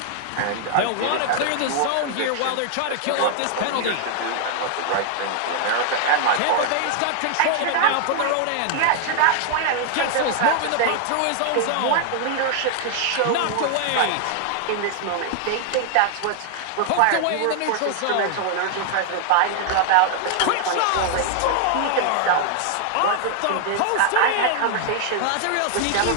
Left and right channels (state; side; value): different; both; correlation 0.00